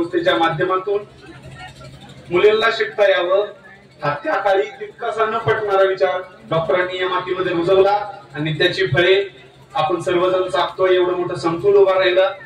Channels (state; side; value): identical; both; correlation 1.00